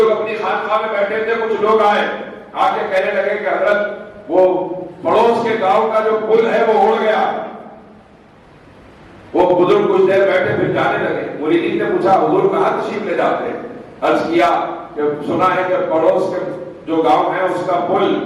اپنی خانقاہ میں بیٹھے تھے, کچھ لوگ آئے آ کے کہنے لگے کہ حضرت وہ پڑوس کے گاؤں کا جو پل ہے وہ اڑ گیا. وہ بزرگ کچھ دیر بیٹھے پھر جانے لگے. مریدین نے پوچھا حضور کہاں تشریف لے جاتے ہیں؟ عرض کیا کہ سنا ہے کہ پڑوس کے جو گاؤں ہے اس کا پل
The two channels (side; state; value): both; identical; correlation 1.00